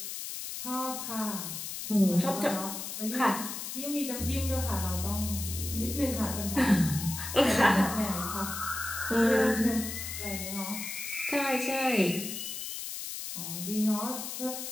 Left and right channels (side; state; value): left; noise; hiss, 6 dB below the sound